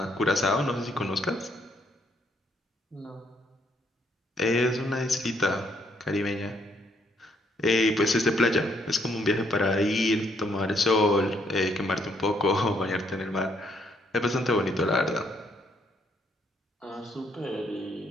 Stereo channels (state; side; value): normal; both; correlation 0.71